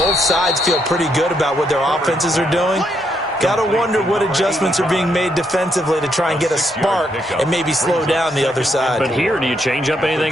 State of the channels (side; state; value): both; normal; correlation 0.76